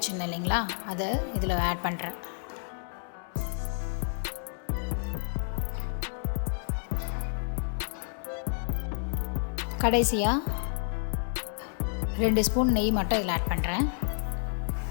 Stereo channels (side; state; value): right; silent; 58 dB below the other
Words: இல்லைங்களா, அதை இதில் ஆட் பண்ணுறேன். கடைசியாக 2 ஸ்பூன் நெய் மட்டும் இதில் ஆட் பண்ணுறேன்.